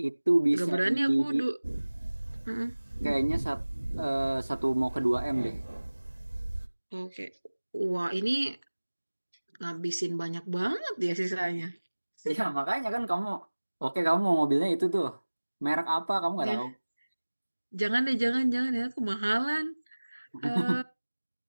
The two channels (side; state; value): both; inverted; correlation -1.00